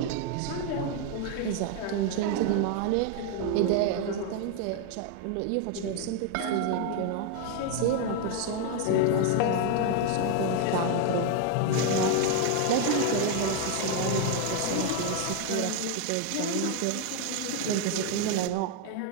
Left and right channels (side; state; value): both; different; correlation 0.00